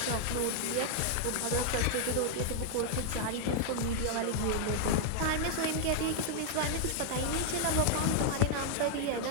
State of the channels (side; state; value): both; different; correlation 0.00